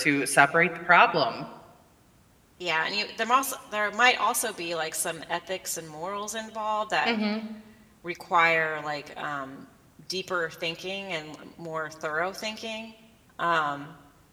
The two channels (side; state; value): both; identical; correlation 1.00